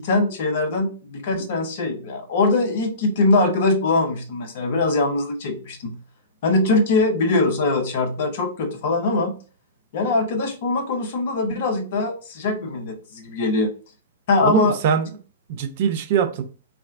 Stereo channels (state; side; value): inverted; both; correlation -0.35